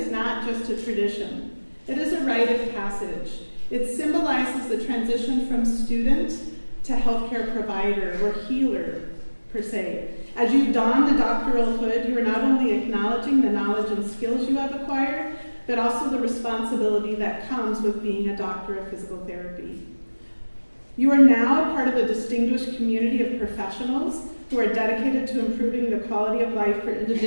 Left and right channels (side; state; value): both; inverted; correlation -1.00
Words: not just a tradition. It is a rite of passage. It symbolizes the transition from student to healthcare provider or healer, per se. As you don the doctoral hood, you are not only acknowledging the knowledge and skills you have acquired, but also the responsibility that comes with being a doctor of physical therapy. You are now a part of a distinguished community of professionals who are dedicated to improving the quality of life for